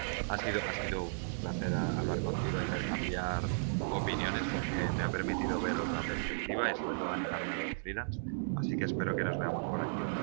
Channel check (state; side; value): silent; left; 55 dB below the other